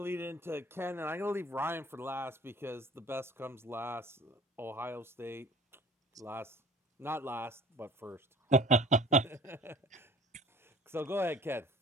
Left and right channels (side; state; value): both; normal; correlation 0.47